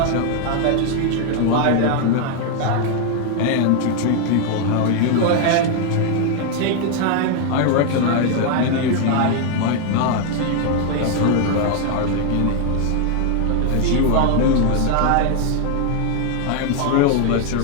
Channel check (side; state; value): both; different; correlation 0.00